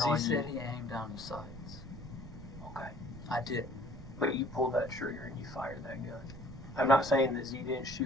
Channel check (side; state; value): right; noise; rumble, 13 dB below the sound